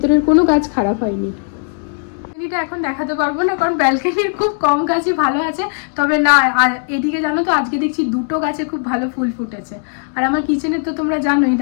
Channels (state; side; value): silent; right; 57 dB below the other